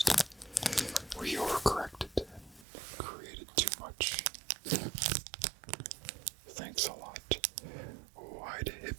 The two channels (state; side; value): drops out; left; at 2.7 s